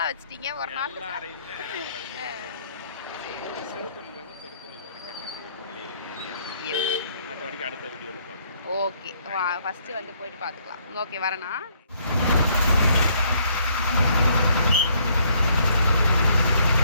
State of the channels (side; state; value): both; inverted; correlation -0.66